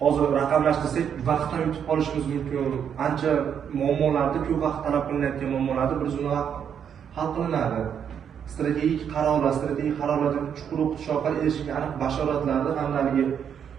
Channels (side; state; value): left; quieter; 8.1 dB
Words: hozir raqamlashtirsak, vaqtdan yutib qolishimiz mumkin. Ancha muammolarda ko'p vaqt talab qilinayotgan muammolarni bir zumda hal qilinadi. Strategik qarorlarga chuqur o'qitish orqali erishilgan aniq bashoratlarni hamda